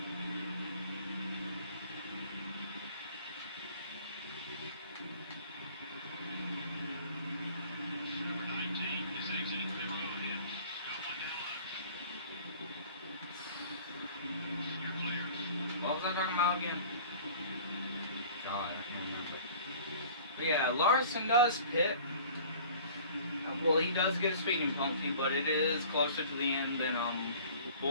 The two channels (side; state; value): both; inverted; correlation -0.47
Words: What was I talking about again? God, I can't remember. But yeah, Larson does pit. Well, he does get a speeding penalty, but it is closer to the end than